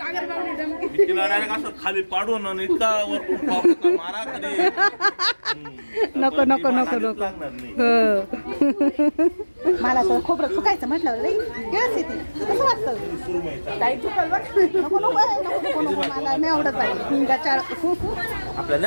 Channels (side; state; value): both; inverted; correlation -1.00